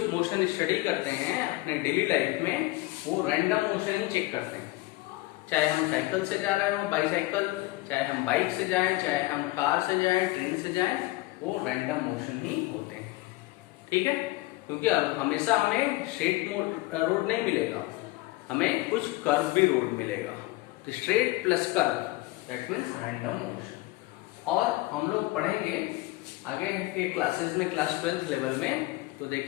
मोशन स्टडी करते हैं अपने डेली लाइफ में वो रैंडम मोशन ही चेक करते हैं, चाहे हम साइकिल से जा रहे हो, बाईसाइकिल, चाहे हम बाइक से जाएं, चाहे हम कार से जाएं, ट्रेन से जाएं, वो रैंडम मोशन ही होते हैं, ठीक है। क्योंकि हमेशा हमें स्ट्रेट रोड नहीं मिलेगा, हमें कुछ कर्व भी रोड मिलेगा, तो straight plus curve that means random motion. और हम लोग पढ़ेंगे आगे के क्लासेस में, क्लास 12th लेवल में, तो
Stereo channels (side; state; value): right; quieter; 20.1 dB